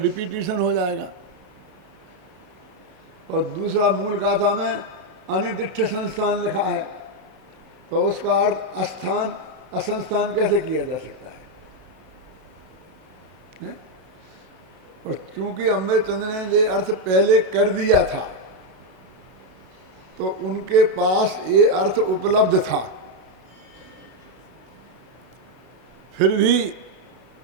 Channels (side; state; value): left; late; 32 ms